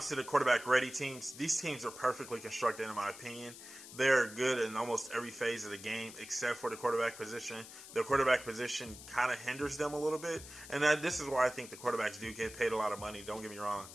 to the quarterback ready teams, these teams are perfectly constructed, in my opinion. They're good in almost every phase of the game except for the quarterback position. The quarterback position kind of hinders them a little bit, and this is why I think the quarterbacks do get paid a lot of money. Don't get me wrong.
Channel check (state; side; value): noise; left; hiss, 15 dB below the sound